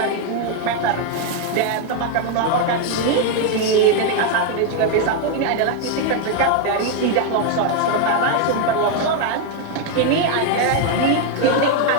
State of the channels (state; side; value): different; both; correlation 0.01